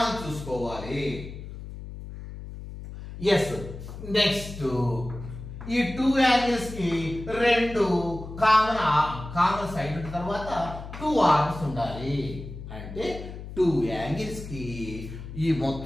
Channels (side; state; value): left; noise; hum, 11 dB below the sound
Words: చూసుకోవాలి ఎస్ నెక్స్ట్ ఈ టూ యాంగిల్స్ కి రెండు కామన్ సైడ్ తర్వాత టూ ఆర్మ్స్ ఉండాలి అంటే టూ యాంగిల్స్ కి ఈ